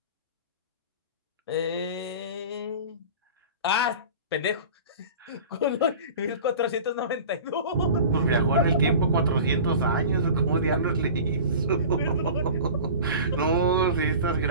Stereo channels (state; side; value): inverted; both; correlation -0.38